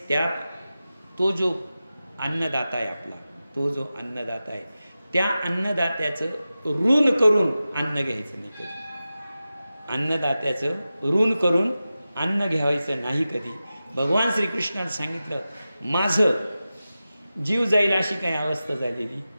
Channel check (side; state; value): both; inverted; correlation -0.94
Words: तो जो अन्नदाता आहे त्या अन्नदात्याचं ऋण करून अन्न घ्यायचं नाही कधी. अन्न घ्यायचं नाही कधी. भगवान श्रीकृष्णाने सांगितलं, माझं जीव जाईल अशी काही अवस्था झालेली